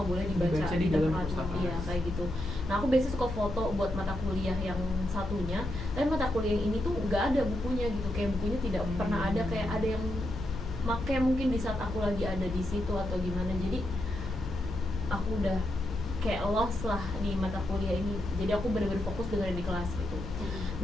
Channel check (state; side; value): noise; left; hum, 9 dB below the sound